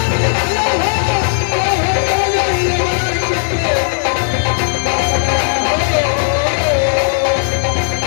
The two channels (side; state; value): right; silent; digital silence